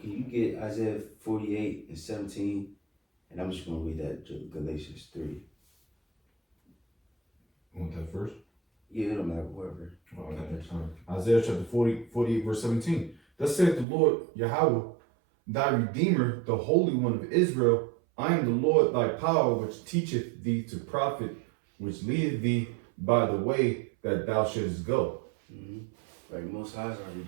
get Isaiah 48 and 17? And I'm just gonna read that Galatians 3. You want that first? Yeah, it don't matter, whoever. Oh, okay. Isaiah chapter 48, verse 17. Thus saith the Lord Yahweh, thy Redeemer, the Holy One of Israel. I am the Lord thy power, which teacheth thee to profit, which leadeth thee by the way that thou shouldest go. Mm-hmm. Right, Most High is our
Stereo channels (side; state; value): left; drops out; at 13.9 s